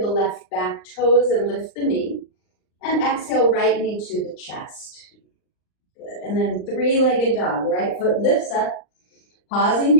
left back toes and lift the knee, and exhale right knee to the chest. Good, and then three-legged dog. Right foot lifts up, pausing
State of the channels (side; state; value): right; late; 39 ms